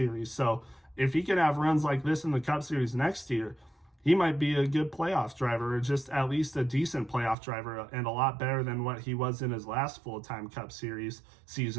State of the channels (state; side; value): drops out; left; at 7.4 s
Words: So if he can have runs like this in the Cup Series next year, he might be a good playoff driver, or just at least a decent playoff driver, and a lot better than what he was in his last full-time Cup Series